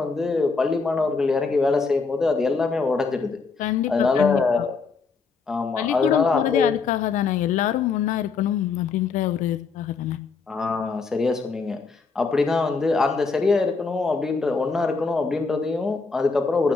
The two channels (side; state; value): right; quieter; 4.8 dB